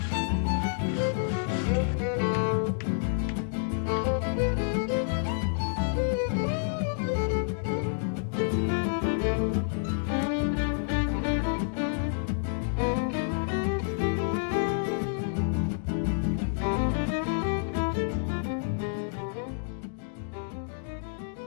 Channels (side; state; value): right; silent; digital silence